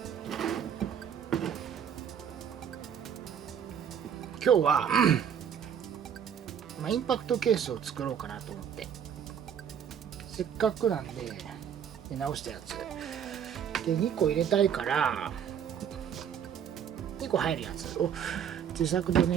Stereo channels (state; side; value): quieter; left; 8.3 dB